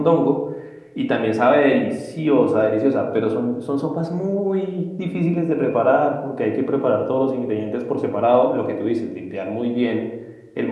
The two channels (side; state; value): both; identical; correlation 1.00